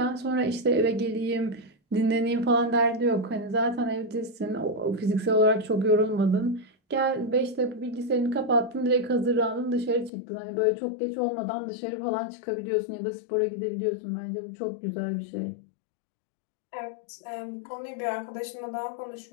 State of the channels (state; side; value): drops out; right; at 10.1 s